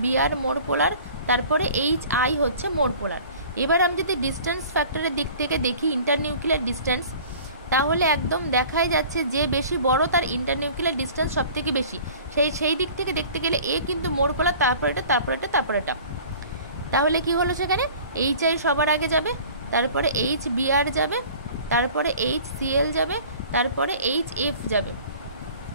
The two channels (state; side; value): inverted; both; correlation -0.46